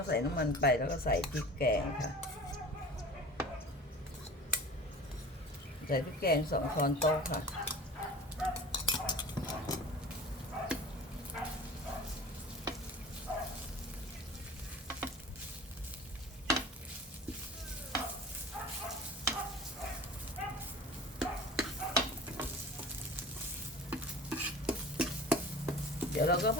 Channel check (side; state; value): both; normal; correlation 0.39